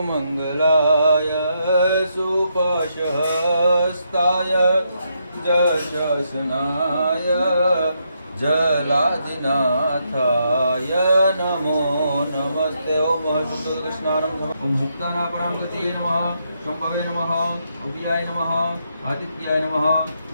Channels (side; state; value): both; inverted; correlation -0.78